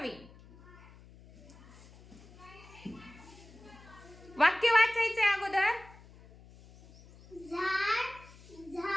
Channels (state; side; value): noise; left; hum, 22 dB below the sound